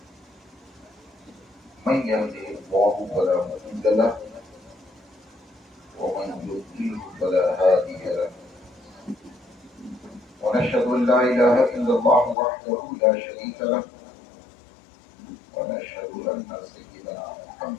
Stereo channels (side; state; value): right; drops out; at 12.4 s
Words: من يهده الله فلا مضل له ومن يضلل فلا هادي له ونشهد أن لا إله إلا الله وحده لا شريك له ونشهد أن سيدنا